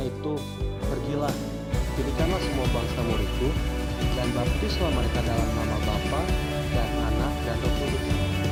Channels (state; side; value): identical; both; correlation 1.00